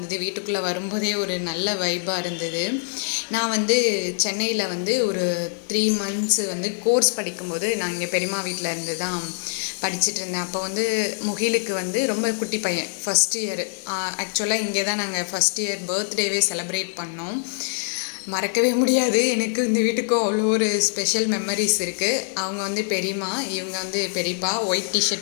வீட்டுக்குள்ளே வரும்போதே ஒரு நல்ல வைப்பாக இருந்தது. நான் வந்து சென்னையில் வந்து ஒரு 3 months வந்து கோர்ஸ் படிக்கும்போது நான் இங்கே பெரியம்மா வீட்டில் இருந்து தான் படிச்சுட்டு இருந்தேன். அப்போ வந்து முகிலுக்கு வந்து ரொம்ப குட்டி பையன், ஃபஸ்ட் இயர். ஆக்சுவலாக இங்கே தான் நாங்கள் ஃபஸ்ட் இயர் பர்த்டேவே செலிப்ரேட் பண்ணோம். மறக்கவே முடியாது. எனக்கு இந்த வீட்டுக்கும் அவ்வளோ ஒரு ஸ்பெஷல் மெமரிஸ் இருக்குது. அவங்க வந்து பெரியம்மா, இவங்க வந்து பெரியப்பா. ஒயிட்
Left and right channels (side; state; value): right; silent; digital silence